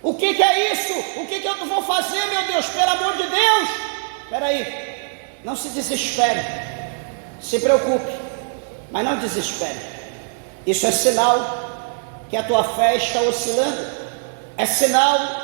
O que é isso? O que eu vou fazer, meu Deus? Pelo amor de Deus! Espera aí, não se desespere, se preocupe, mas não desespere. Isso é sinal que a tua fé está oscilando. É sinal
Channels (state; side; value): silent; left; digital silence